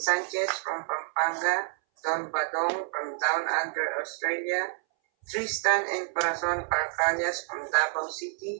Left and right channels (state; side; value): silent; left; 59 dB below the other